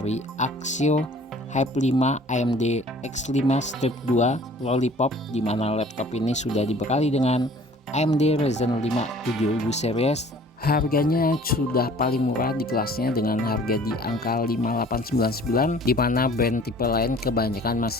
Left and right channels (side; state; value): both; normal; correlation 0.51